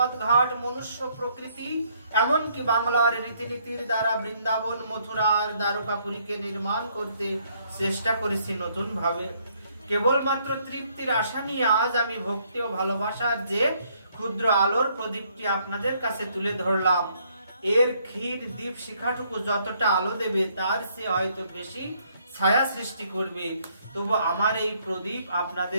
ঘাট, মনুষ্য প্রকৃতি, এমনকি বাংলার রীতিনীতির দ্বারা বৃন্দাবন, মথুরা আর দ্বারকাপুরীকে নির্মাণ করতে চেষ্টা করেছি নতুন ভাবে। কেবলমাত্র তৃপ্তির আশা নিয়ে আজ আমি ভক্তি ও ভালোবাসার যে ক্ষুদ্র আলোর প্রদীপটি আপনাদের কাছে তুলে ধরলাম। এর ক্ষীর দীপ শিখাটুকু যতটা আলো দেবে তার সে হয়তো বেশি ছায়া সৃষ্টি করবে। তবু আমার এই প্রদীপ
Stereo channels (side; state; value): both; inverted; correlation -0.68